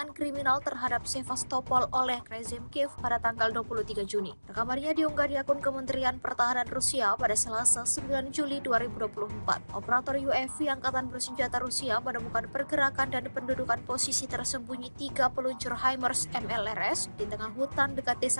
kriminal terhadap Sevastopol oleh rezim Kiev pada tanggal 23 Juni. Rekamannya diunggah di akun Kementerian Pertahanan Rusia pada Selasa 9 Juli 2024. Operator UAV Angkatan Bersenjata Rusia menemukan pergerakan dan pendudukan posisi tersembunyi 3 peluncur HIMARS MLRS di tengah hutan dekat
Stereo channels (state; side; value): inverted; both; correlation -1.00